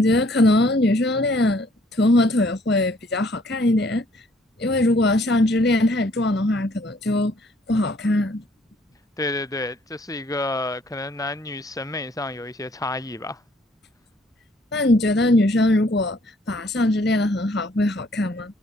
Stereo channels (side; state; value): both; normal; correlation 0.62